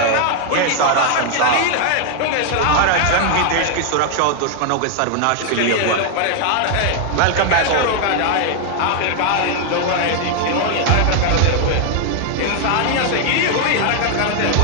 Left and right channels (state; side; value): different; both; correlation 0.00